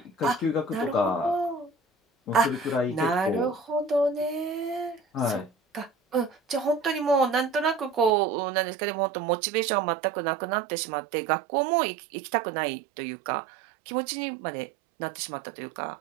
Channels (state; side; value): drops out; left; at 8.1 s